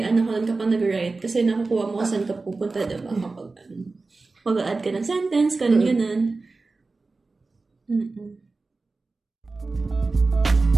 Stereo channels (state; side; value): quieter; left; 3.7 dB